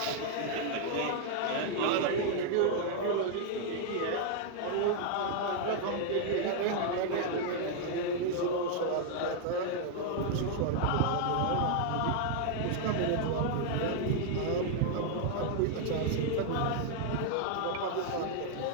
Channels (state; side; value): different; both; correlation 0.00